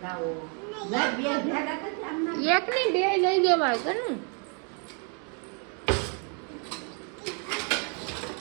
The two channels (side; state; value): left; quieter; 39.5 dB